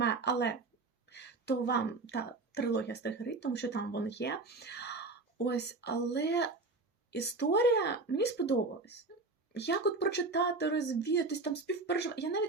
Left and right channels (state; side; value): quieter; left; 3.5 dB